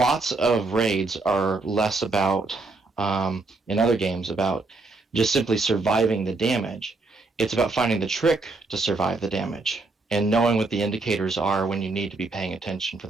of raids are less about, in other games, about just simply surviving the damage. It's about finding the trick to survive the damage and knowing what the indicators are when you need to be paying attention for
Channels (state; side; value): quieter; left; 3.5 dB